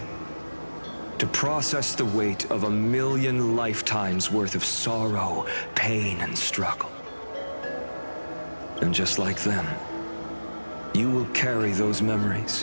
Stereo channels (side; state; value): both; inverted; correlation -1.00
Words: to process the weight of 1,000,000 lifetimes worth of sorrow, pain, and struggle. And just like them, you will carry those